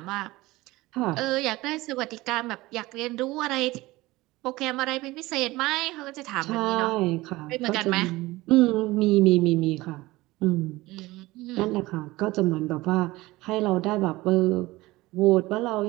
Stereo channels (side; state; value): left; quieter; 19.6 dB